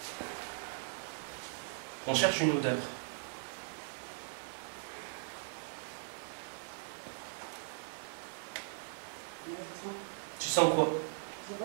On cherche une odeur. Tu sens quoi? Je sais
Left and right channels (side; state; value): left; silent; digital silence